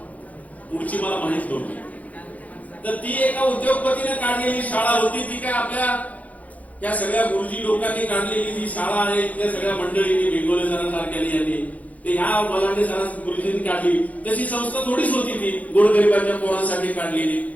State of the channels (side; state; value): right; late; 0.072 ms